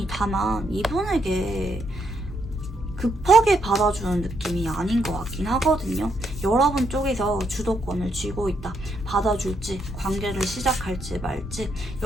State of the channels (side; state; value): both; normal; correlation 0.76